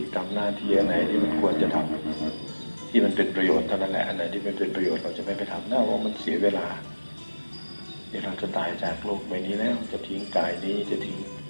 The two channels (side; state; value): both; inverted; correlation -1.00